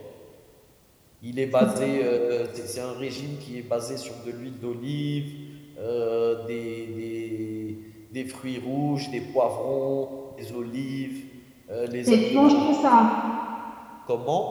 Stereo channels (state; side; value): identical; both; correlation 1.00